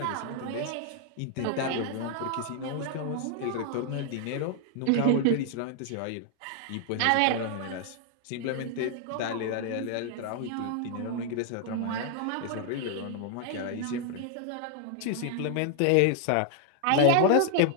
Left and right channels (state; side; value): different; both; correlation 0.00